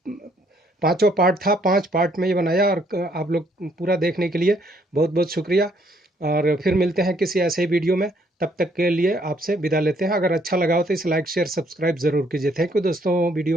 5वां पार्ट था, 5 पार्ट में ये बनाया और आप लोग पूरा देखने के लिए बहुत बहुत शुक्रिया। और फिर मिलते हैं किसी ऐसे ही वीडियो में, तब तक के लिए आपसे विदा लेते हैं। अगर अच्छा लगा हो तो इसे लाइक शेयर सब्सक्राइब ज़रूर कीजिए। थैंक यू दोस्तों वीडियो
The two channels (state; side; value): normal; both; correlation 0.67